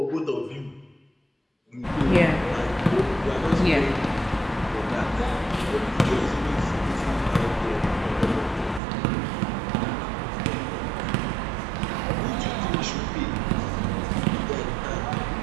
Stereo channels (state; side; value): drops out; left; at 8.8 s